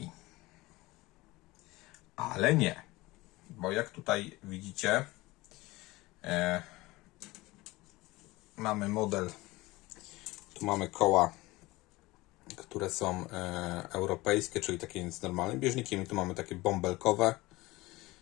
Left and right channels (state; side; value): quieter; right; 20.6 dB